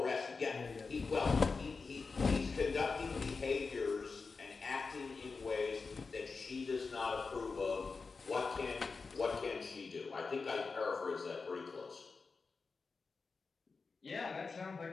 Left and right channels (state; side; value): quieter; right; 4.5 dB